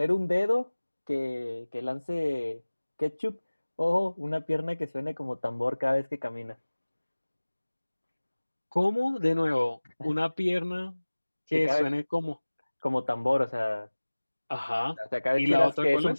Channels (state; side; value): inverted; both; correlation -1.00